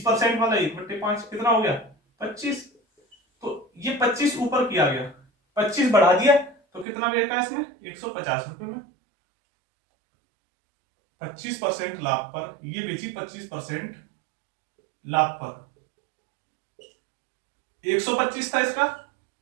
वाला 1/5 कितना हो गया 25। तो ये 25 ऊपर किया गया, 25 बढ़ा दिया तो कितना बेचा इसमें 150 रुपए में। 25% लाभ पर ये बेची, 25% लाभ पर 125 था इसका,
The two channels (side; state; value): left; drops out; at 6.9 s